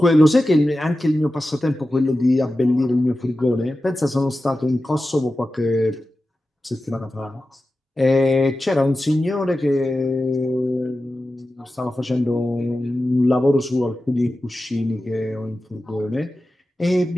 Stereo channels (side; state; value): both; normal; correlation 0.93